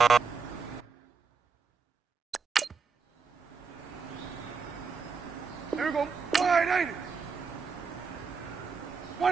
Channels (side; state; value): left; quieter; 5.4 dB